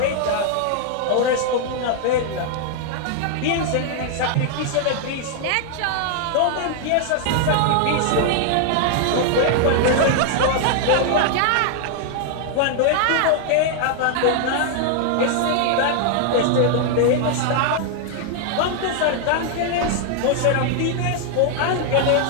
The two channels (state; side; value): different; both; correlation 0.00